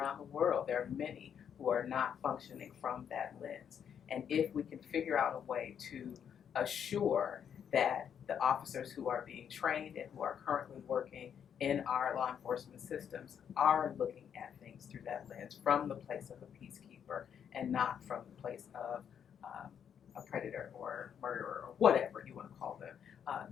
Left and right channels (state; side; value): quieter; right; 8.3 dB